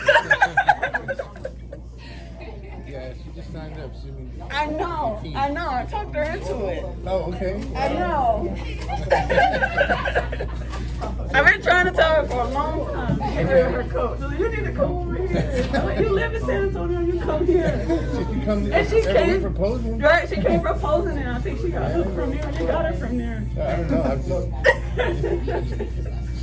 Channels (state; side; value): identical; both; correlation 1.00